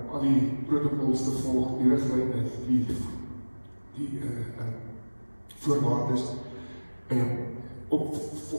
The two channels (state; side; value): inverted; both; correlation -1.00